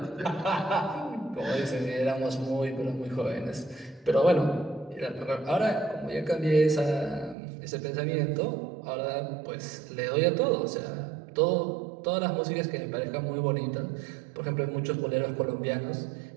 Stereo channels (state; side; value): drops out; left; at 7.4 s